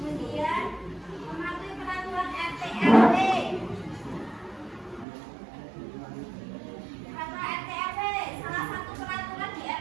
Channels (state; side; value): drops out; left; at 5.1 s